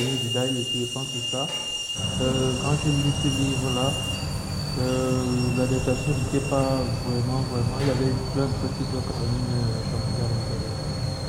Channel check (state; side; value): identical; both; correlation 1.00